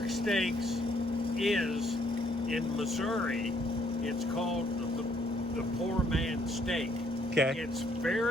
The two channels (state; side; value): normal; both; correlation 0.68